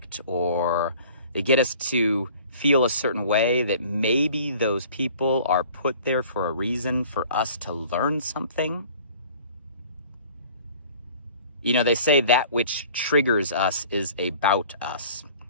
or they get us to feel a certain way, that maybe those people are put there for a reason, for us to learn something? You know, they say that which triggers us is about us.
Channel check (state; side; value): inverted; both; correlation -0.50